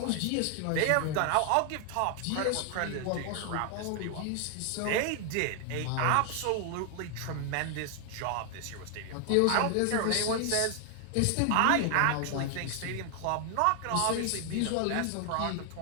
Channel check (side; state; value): both; different; correlation 0.00